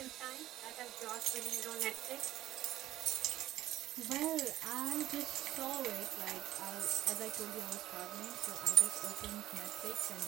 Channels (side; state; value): left; quieter; 14.5 dB